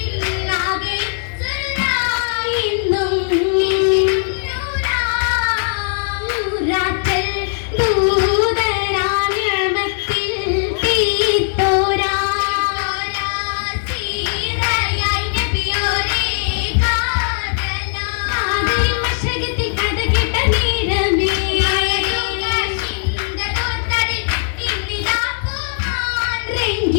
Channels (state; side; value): silent; right; 67 dB below the other